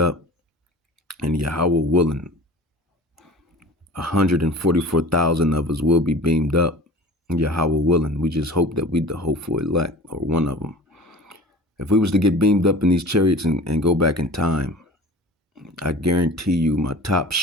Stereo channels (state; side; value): normal; both; correlation 0.40